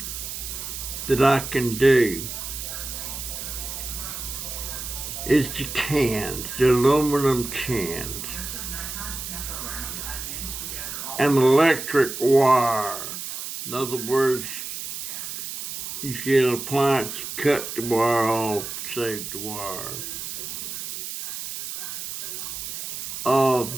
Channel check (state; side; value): noise; right; hiss, 7 dB below the sound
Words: that I can do is the cans, the aluminum cans, and electric wire. In other words, you get an appliance, cut the wire off, save the wire.